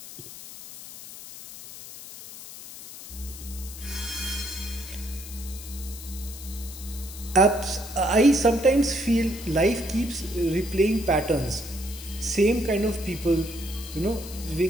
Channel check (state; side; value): noise; left; hiss, 13 dB below the sound